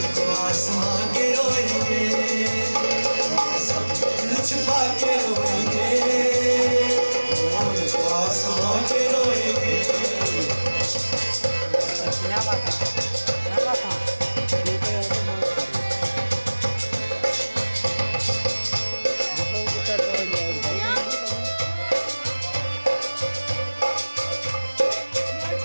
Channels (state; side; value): inverted; both; correlation -1.00